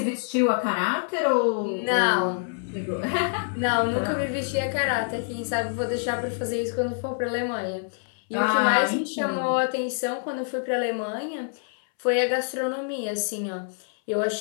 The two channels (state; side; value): silent; right; 61 dB below the other